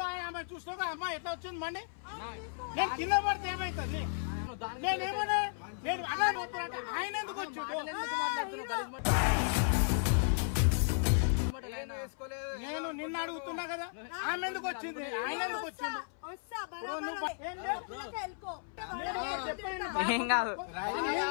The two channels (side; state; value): right; silent; 55 dB below the other